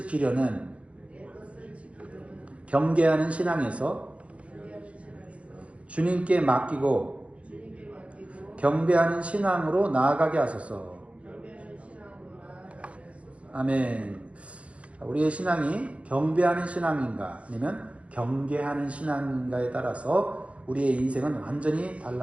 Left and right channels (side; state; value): left; late; 0.063 ms